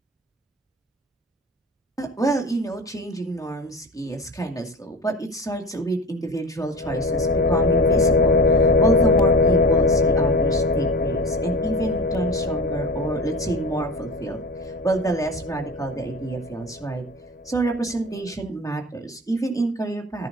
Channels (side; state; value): both; normal; correlation 0.32